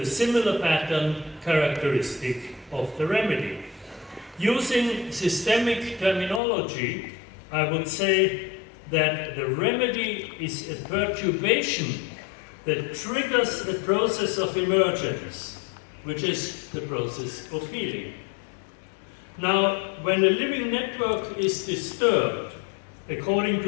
a similar pattern characteristic of the remedy. Using systemic terminology, I would say that the remedy is a perturbation that triggers a process of emergence, which is the process of healing. Now, when a living network is disturbed, according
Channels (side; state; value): right; drops out; at 6.4 s